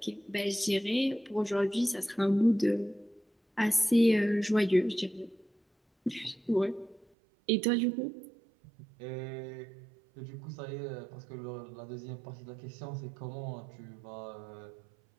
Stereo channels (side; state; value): left; drops out; at 7.1 s